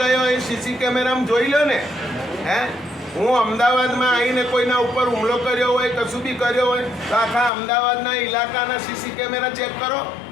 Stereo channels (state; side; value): drops out; right; at 7.5 s